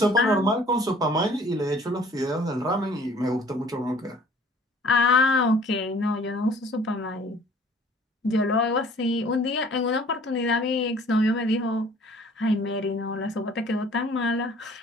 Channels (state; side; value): normal; both; correlation 0.53